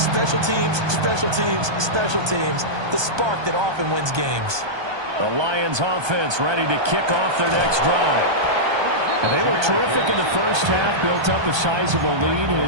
teams, special teams, special teams. The spark that often wins games. The Lions offense ready to kick off their next drive. And they were terrific in the first half, built up a sizable lead, and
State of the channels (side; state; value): left; late; 1.2 ms